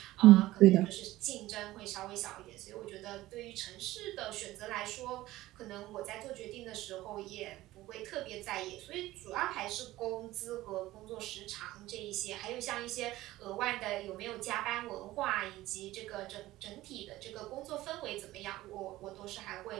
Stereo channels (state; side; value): quieter; left; 16.7 dB